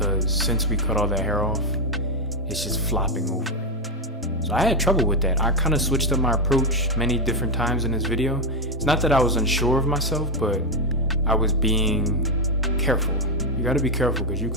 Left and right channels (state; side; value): normal; both; correlation 0.05